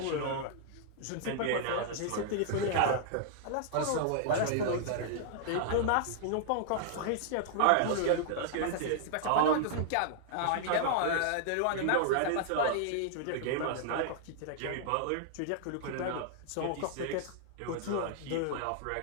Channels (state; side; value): different; both; correlation -0.01